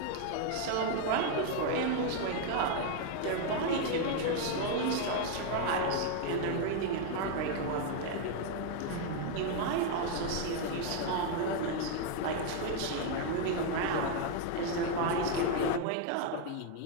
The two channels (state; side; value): different; both; correlation 0.01